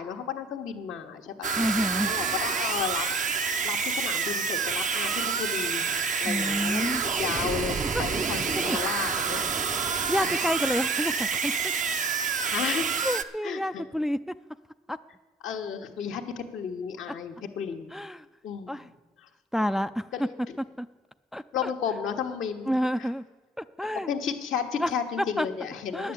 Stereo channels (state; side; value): normal; both; correlation 0.51